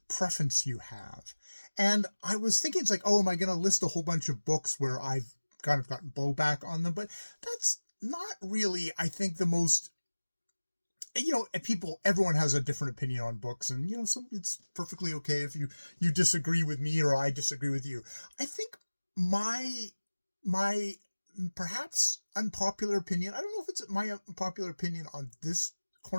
preference you have? And I was thinking, it's like, oh, am I going to list a whole bunch of books where I've kind of gotten blowback on them? But that's not really, I think, the most, everyone has a different opinion on books, and, it's perfectly okay if you disagree with me or I disagree with you. I think my perhaps unpopular opinion, I don't know if it's my unpopular opinion on this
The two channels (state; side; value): inverted; both; correlation -1.00